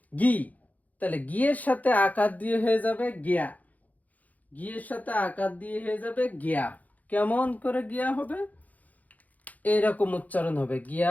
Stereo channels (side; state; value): right; late; 0.078 ms